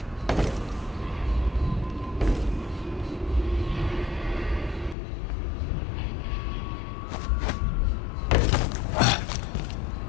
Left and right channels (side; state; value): right; drops out; at 5.0 s